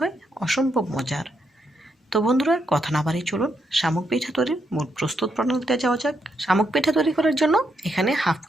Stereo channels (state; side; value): normal; both; correlation 0.79